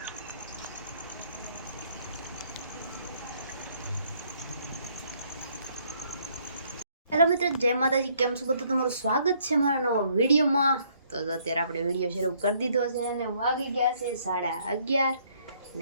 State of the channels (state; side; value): inverted; both; correlation -0.66